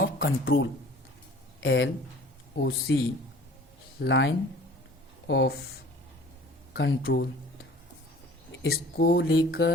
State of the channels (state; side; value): normal; both; correlation 0.48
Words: control, LOC, line of control. इसको